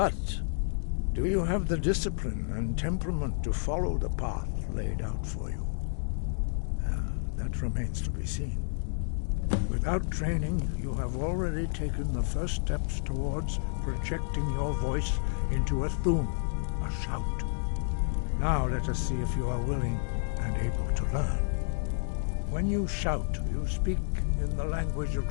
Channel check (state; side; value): silent; right; digital silence